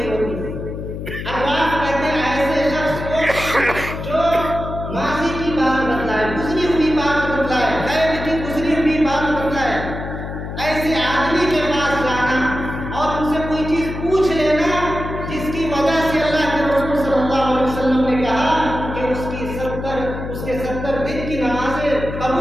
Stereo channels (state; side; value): noise; left; hum, 7 dB below the sound